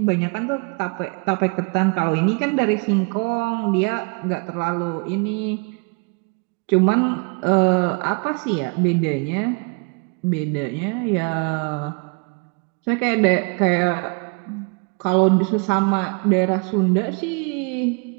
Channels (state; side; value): quieter; left; 32.4 dB